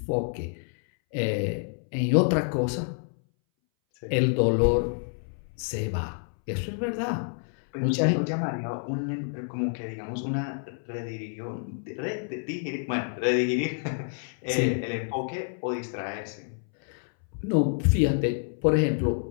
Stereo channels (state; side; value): silent; right; 59 dB below the other